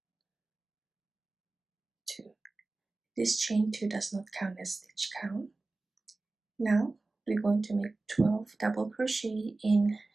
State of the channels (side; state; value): left; quieter; 3.3 dB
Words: 2. This chain 2 does not count as stitch count. Now we're going to make 12 double crochet in